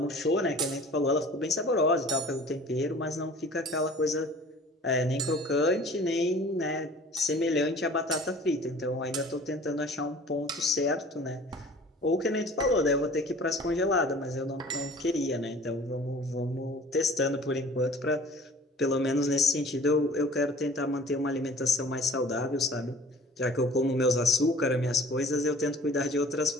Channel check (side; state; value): both; normal; correlation 0.47